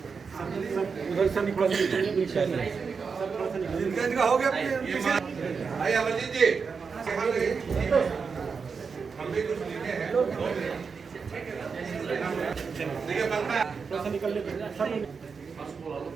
उधर से निकल इनका हो गया। भाई अमरजीत जी, हम भी कुछ लिखे हैं। देखिए पंखा थोड़ा सा निकल ले सर।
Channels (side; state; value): left; quieter; 5.4 dB